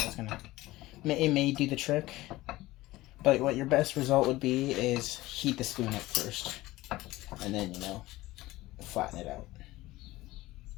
But it may do the trick. But what your best result would be is heat the spoon up first, and then flatten it out.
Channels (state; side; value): quieter; right; 18.1 dB